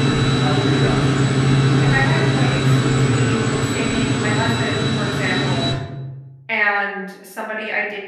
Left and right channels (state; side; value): identical; both; correlation 1.00